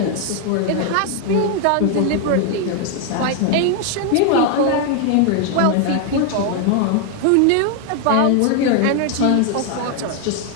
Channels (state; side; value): different; both; correlation 0.00